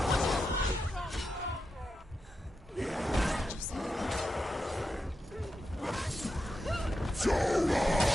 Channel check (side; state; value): both; normal; correlation 0.88